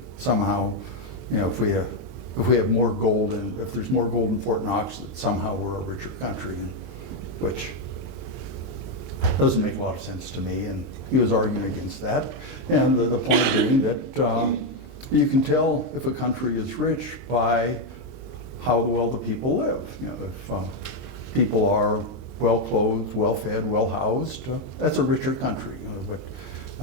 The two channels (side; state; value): left; late; 23 ms